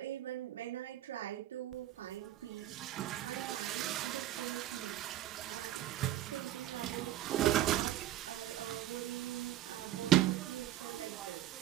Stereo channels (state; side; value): quieter; left; 13.3 dB